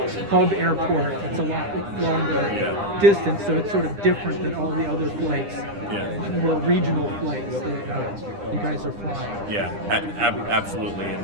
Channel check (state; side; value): late; left; 9.9 ms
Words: hub airport. It's a lot longer distance, so it's sort of different than all the other flights, more regional flights that you guys are flying. Yeah, absolutely.